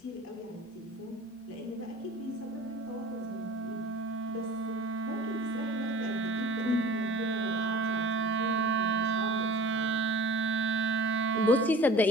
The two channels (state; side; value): normal; both; correlation 0.43